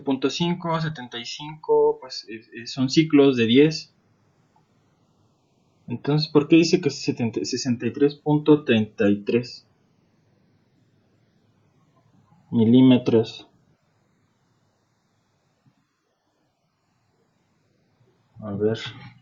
75, pues son ciclos de 10. Entonces, ¿por qué dice que es 63.33 milímetros? A ver,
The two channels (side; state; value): both; identical; correlation 1.00